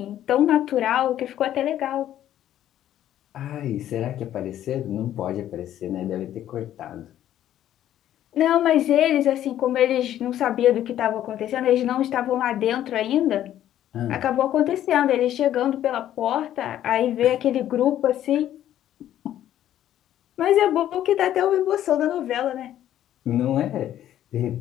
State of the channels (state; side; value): quieter; right; 11.9 dB